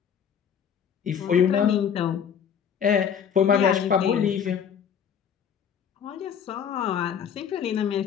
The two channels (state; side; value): quieter; right; 7.9 dB